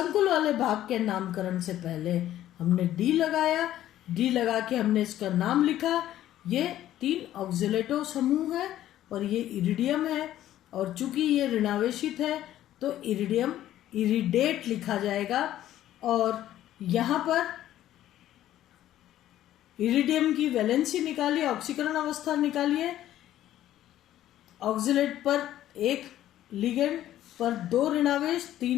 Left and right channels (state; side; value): quieter; right; 12.9 dB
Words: वाले भाग के नामकरण से पहले हमने D लगाया। D लगा के हमने इसका नाम लिखा। ये 3 ऑक्सिलेटो समूह है और ये इरिडियम है और चूंकि ये ऋणावेशित है तो इरिडियम इरिडेट लिखा जाएगा। और यहाँ पर इरिडियम की वैलेंसी निकालिए, ऑक्सीकरण अवस्था निकालिए। ऑक्सिलेट पर 1 लिगेंड पर 2 ऋणावेश,